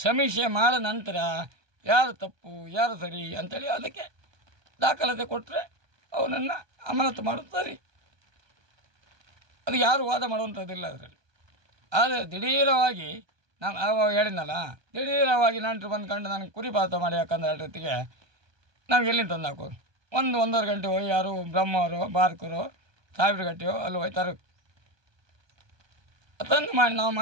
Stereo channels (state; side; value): late; left; 1.2 ms